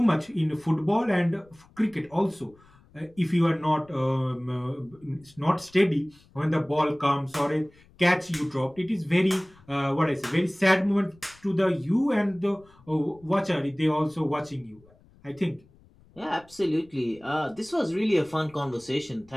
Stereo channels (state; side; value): noise; left; rumble, 28 dB below the sound